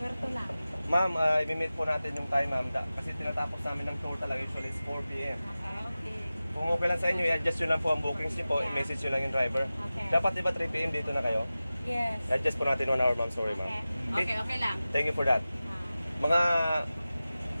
lang. Ma'am, i-meet po natin yung time ma'am kasi tinatapos namin ng tour talaga usually is 4 p.m. Okay. Kung okay lang sa inyo, i-adjust nyo lang po ang bookings nyo po, i-message nyo lang yung driver. Okay. Dapat diba 3 p.m. dito na kayo? Yes. I-adjust po natin 1 hour ma'am, sorry ma'am. Okay lang. Thank you for that. Mga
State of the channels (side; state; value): both; inverted; correlation -0.96